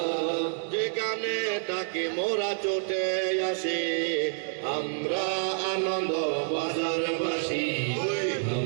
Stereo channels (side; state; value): left; silent; 59 dB below the other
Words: যেখানে তাকে মোরা চোটে আসে, আমরা আনন্দ বাজারবাসী,